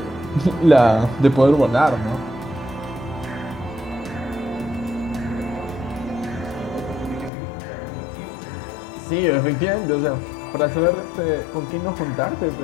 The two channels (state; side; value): drops out; right; at 7.3 s